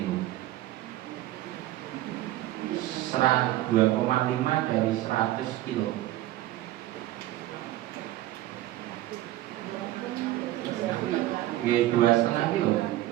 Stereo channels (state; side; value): quieter; left; 15.5 dB